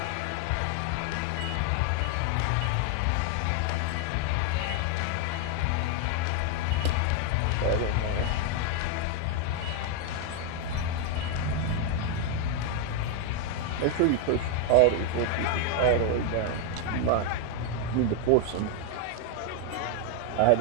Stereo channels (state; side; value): different; both; correlation 0.01